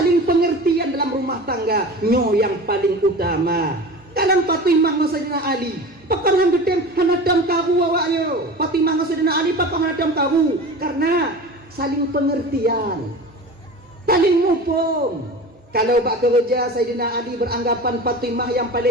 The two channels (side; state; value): both; normal; correlation 0.34